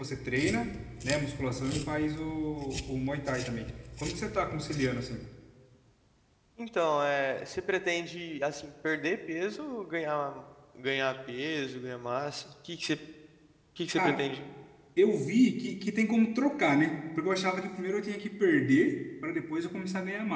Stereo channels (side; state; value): both; identical; correlation 1.00